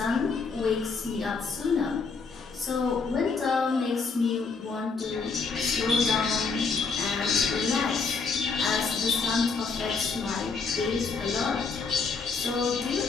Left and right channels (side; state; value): right; quieter; 4.7 dB